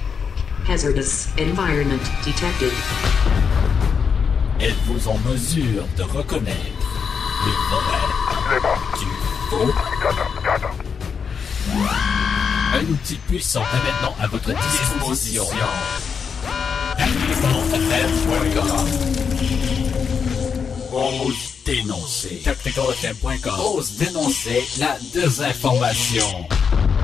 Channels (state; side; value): quieter; right; 6.3 dB